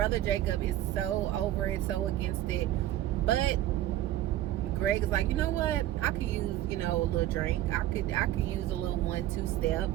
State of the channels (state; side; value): quieter; left; 13.6 dB